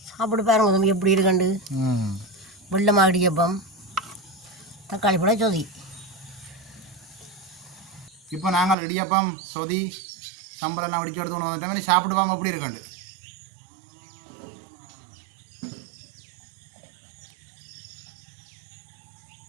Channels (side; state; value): left; drops out; at 8.8 s